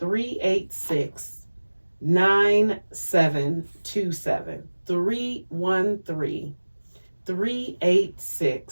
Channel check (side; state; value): both; inverted; correlation -1.00